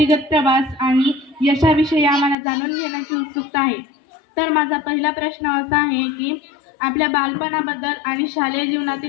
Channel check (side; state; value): right; drops out; at 2.4 s